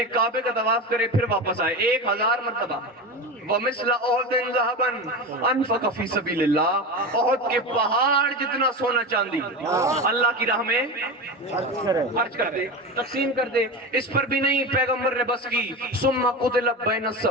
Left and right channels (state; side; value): normal; both; correlation 0.23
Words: کعبے کا طواف کرے, پھر واپس آئے 1000 مرتبہ. وَمِثْلَ أُحُدٍ ذَهَبًا أَنفَقَ فِي سَبِيلِ اللَّهِ, احد کے پہاڑ جتنا سونا چاندی اللہ کی راہ میں خرچ کر دے, تقسیم کر دے. اس پر بھی نہیں, پیغمبر نے بس کی. ثُمَّ قُتِلَ بَيْنَ